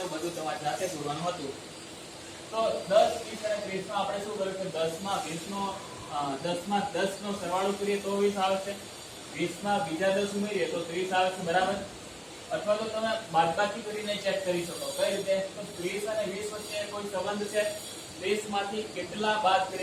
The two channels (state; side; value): identical; both; correlation 1.00